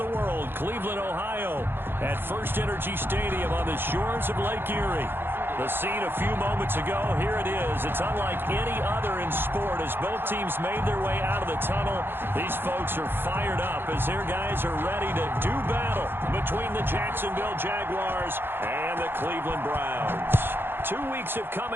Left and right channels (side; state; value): left; late; 0.10 ms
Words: world, Cleveland, Ohio, at First Energy Stadium on the shores of Lake Erie. The scene a few moments ago, here it is. It's unlike any other in sport as both teams made their way out of the tunnel. These folks are fired up as their guys are ready to do battle between the Jacksonville Jaguars and the Cleveland Browns. 2 weeks have come